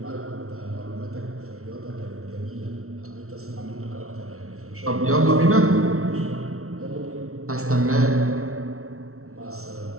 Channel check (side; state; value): left; late; 0.63 ms